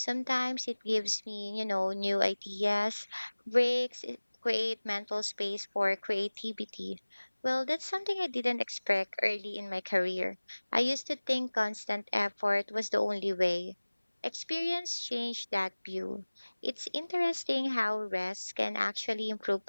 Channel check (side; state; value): both; inverted; correlation -1.00